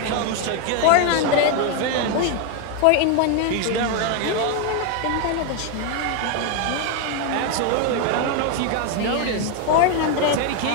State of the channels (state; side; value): different; both; correlation 0.01